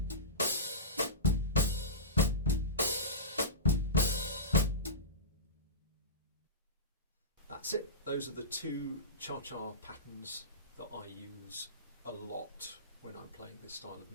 that's it. Those are the two cha-cha patterns that I use a lot when I'm playing this style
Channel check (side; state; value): both; normal; correlation -0.20